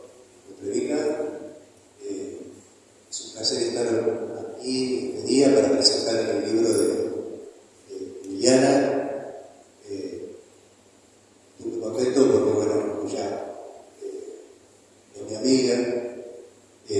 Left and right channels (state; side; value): identical; both; correlation 1.00